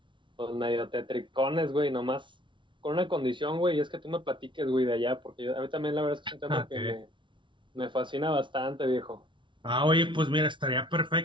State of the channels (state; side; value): late; left; 0.24 ms